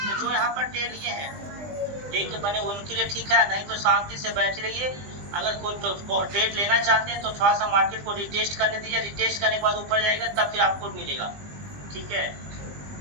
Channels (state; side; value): late; left; 20 ms